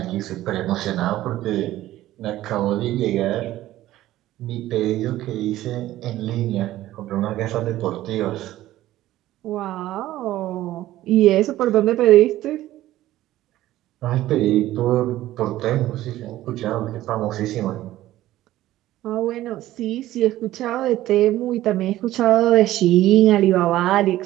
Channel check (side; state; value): left; quieter; 14.9 dB